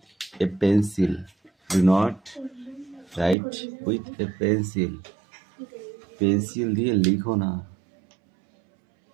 a pencil, do not right with a pencil. Pencil দিয়ে লিখো না,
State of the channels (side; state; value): left; drops out; at 3.4 s